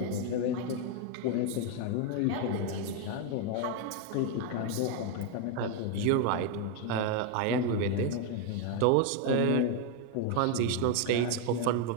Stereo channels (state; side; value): different; both; correlation 0.01